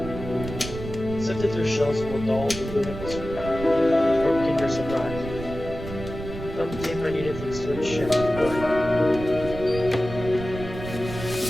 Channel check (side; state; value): right; noise; rumble, 9 dB below the sound